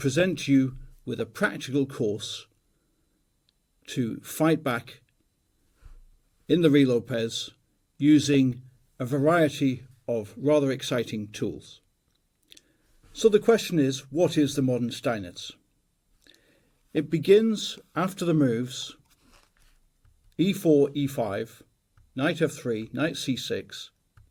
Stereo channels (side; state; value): both; identical; correlation 1.00